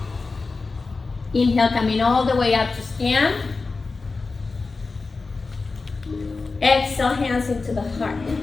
Inhale, coming all the way up to stand. Exhale, hands into the heart.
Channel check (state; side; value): quieter; right; 4.0 dB